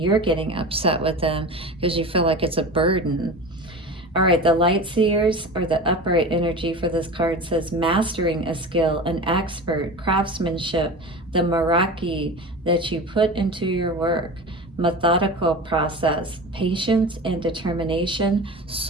getting upset with them because you feel like it's a burden. All right, the Light Seers, or the upright energy for this card, says mastering a skill, an expert, craftsmanship, the Meraki that you put into your work, methodical process, patience and determination,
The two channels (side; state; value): both; normal; correlation 0.31